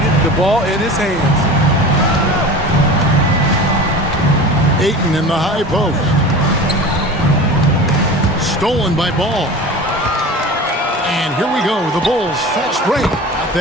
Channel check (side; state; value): both; normal; correlation 0.35